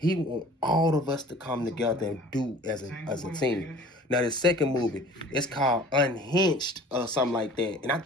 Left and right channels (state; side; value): normal; both; correlation 0.47